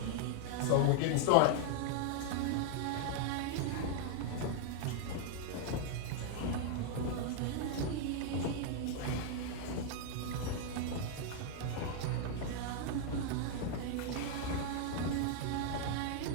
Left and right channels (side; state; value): both; different; correlation 0.00